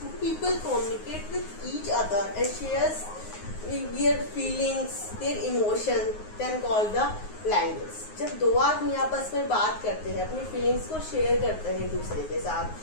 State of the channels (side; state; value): right; late; 9.5 ms